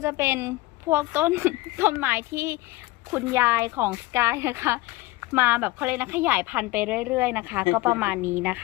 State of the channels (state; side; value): quieter; right; 19.7 dB